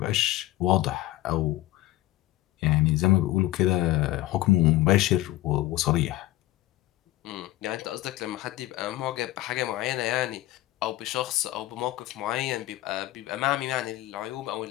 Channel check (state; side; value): quieter; right; 16.0 dB